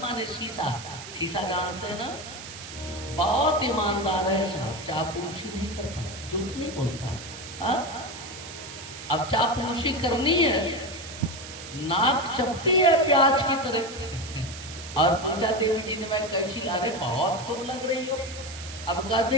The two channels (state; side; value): noise; right; hiss, 12 dB below the sound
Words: शीशा, शीशा जानते हैं ना, बहुत ईमानदार है साहब, चापलूसी नहीं करता, झूठ नहीं बोलता। हाँ, अब चापलूसी करनी है, नाक चपटी है प्याज की तरह। और पूछा देवी जी ने, मैं कैसी ला रहे, बहुत खूब लग रही हो। अब कहते